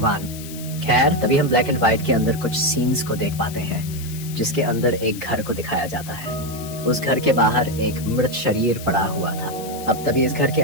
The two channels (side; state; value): left; noise; hiss, 14 dB below the sound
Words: खैर, तभी हम ब्लैक एंड व्हाइट के अंदर कुछ सीन्स को देख पाते हैं जिसके अंदर एक घर को दिखाया जाता है। उस घर के बाहर एक मृत शरीर पड़ा हुआ था। अब तभी इस घर के